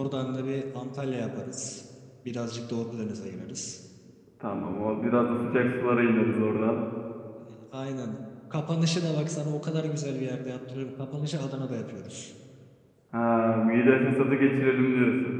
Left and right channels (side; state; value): both; identical; correlation 1.00